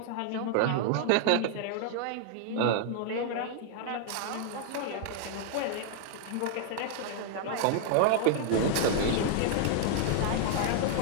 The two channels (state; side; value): different; both; correlation -0.01